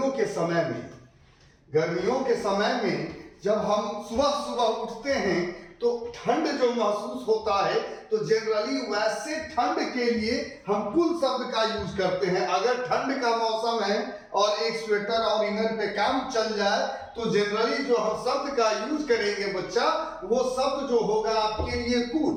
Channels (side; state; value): both; identical; correlation 1.00